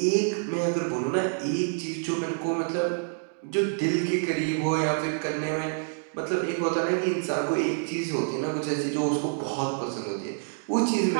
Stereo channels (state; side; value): silent; left; digital silence